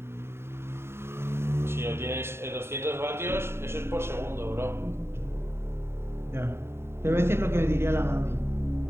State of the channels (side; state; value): left; late; 0.12 ms